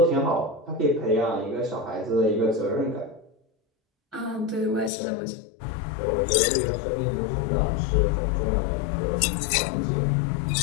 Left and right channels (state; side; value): drops out; right; at 4.9 s